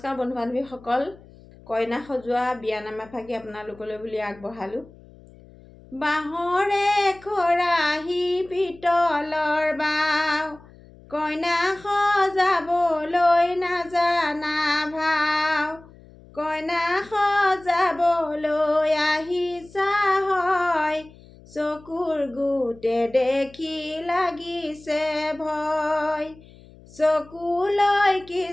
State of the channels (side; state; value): left; noise; hum, 23 dB below the sound